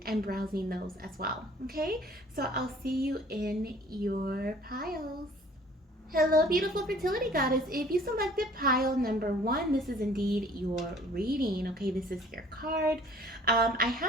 and browsing those as well, okay? So I'll see you in your piles. Hello, beautiful fertility goddess. If you selected pile number one, this is indeed your reading. Okay, this is your card. I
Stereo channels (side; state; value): both; normal; correlation 0.53